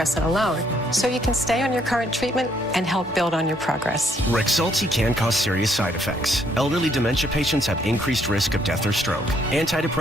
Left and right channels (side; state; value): both; normal; correlation 0.69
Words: alone. So you can stay on your current treatment and help build on your progress. Rexulti can cause serious side effects. Elderly dementia patients have increased risk of death or stroke.